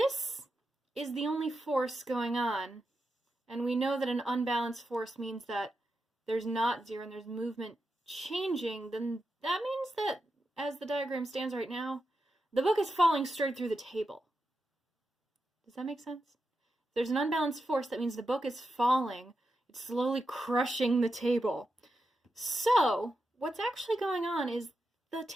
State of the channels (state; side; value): normal; both; correlation 0.88